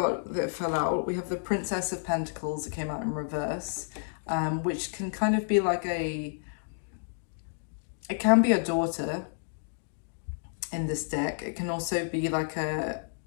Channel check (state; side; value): silent; right; digital silence